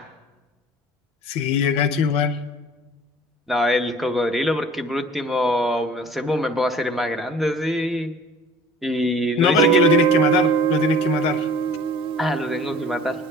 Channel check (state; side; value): normal; both; correlation 0.47